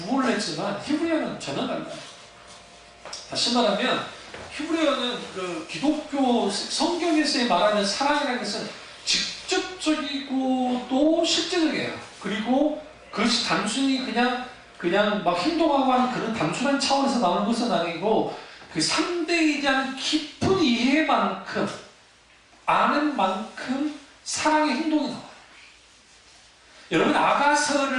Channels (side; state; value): both; identical; correlation 1.00